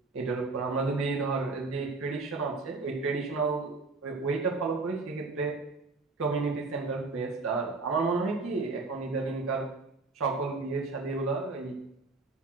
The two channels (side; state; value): left; quieter; 3.7 dB